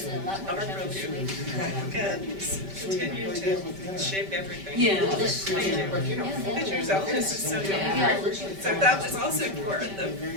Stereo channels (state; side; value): late; left; 5.1 ms